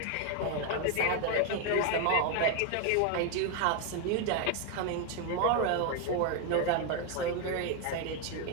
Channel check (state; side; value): different; both; correlation 0.01